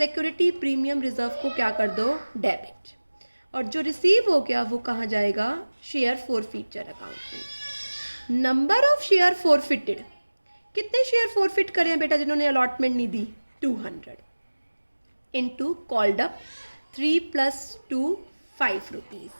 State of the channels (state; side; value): inverted; both; correlation -1.00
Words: premium reserve को क्या कर दो, डेबिट। और जो रिसीव हो गया वो कहाँ जाएगा, शेयर फॉरफीचर अकाउंट में। नंबर ऑफ शेयर फॉरफिटेड, कितने शेयर फॉरफिट करें बेटा जिन्होंने अलॉटमेंट नहीं दी, 200 इंटू कॉल्ड अप 3 + 2 5 रुपीज़।